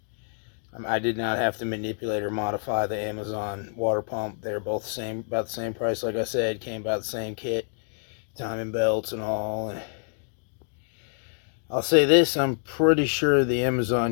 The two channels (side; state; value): right; silent; digital silence